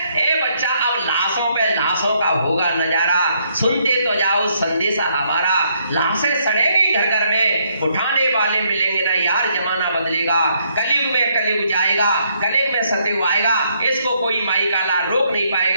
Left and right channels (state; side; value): inverted; both; correlation -0.72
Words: ए बच्चा अब लाशों पे लाशों का होगा नजारा, सुनते तो जाओ संदेशा हमारा, लाशें सड़ेंगी घर घर में, उठाने वाले मिलेंगे ना यार, जमाना बदलेगा, कलयुग में कलयुग जाएगा, कलयुग में सतयुग आएगा, इसको कोई माई काला रोक नहीं